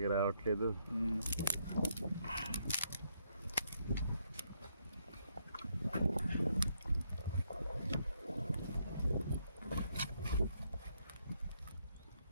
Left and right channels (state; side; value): inverted; both; correlation -0.75